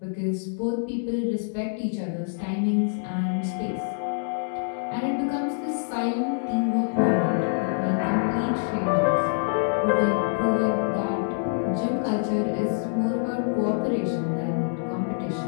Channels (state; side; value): silent; right; digital silence